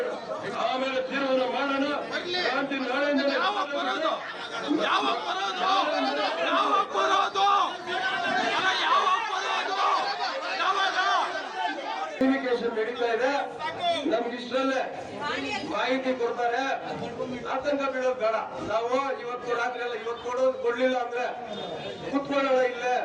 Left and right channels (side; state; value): both; identical; correlation 1.00